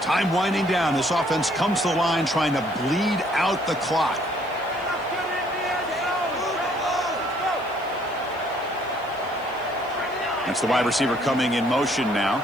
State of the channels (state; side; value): noise; left; hiss, 27 dB below the sound